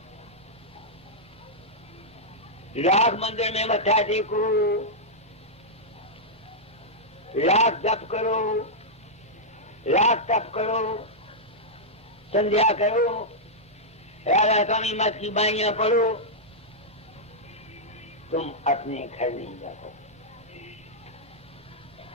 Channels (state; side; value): normal; both; correlation -0.08